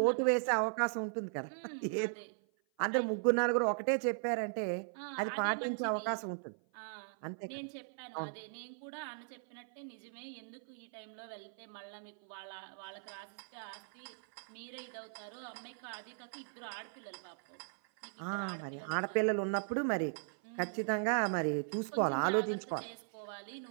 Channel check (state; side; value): silent; left; 52 dB below the other